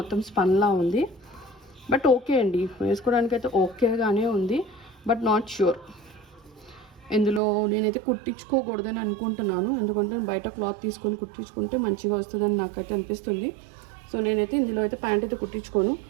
స్పన్లా ఉంది. బట్ ఓకే అండి, వేసుకోవడానికి అయితే ఓకేగానే ఉంది. బట్ నాట్ ష్యూర్, ఇందులో నేనైతే కుట్టించుకోకూడదని అనుకుంటున్నాను. ఎందుకంటే బయట క్లాత్ తీసుకొని కుట్టించుకుంటే మంచిగా వస్తుందని నాకైతే అనిపిస్తుంది. సో నేనైతే ఇందులో అయితే ప్యాంట్ అయితే కుట్టించుకోను.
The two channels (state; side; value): drops out; left; at 7.4 s